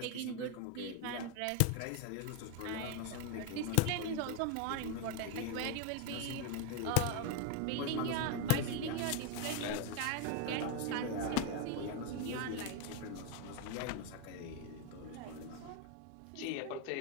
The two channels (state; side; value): different; both; correlation 0.01